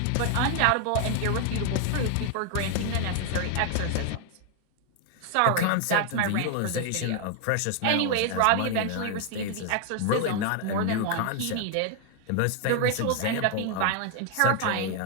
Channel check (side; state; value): both; different; correlation 0.00